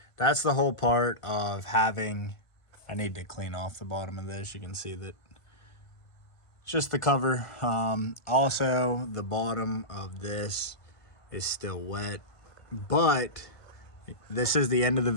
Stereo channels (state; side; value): late; right; 1.5 ms